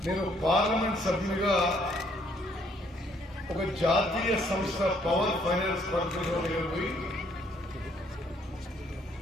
నేను పార్లమెంట్ సభ్యునిగా ఒక జాతీయ సంస్థ పవర్ ఫైనాన్స్ కార్పొరేషన్ పోయి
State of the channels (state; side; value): normal; both; correlation 0.66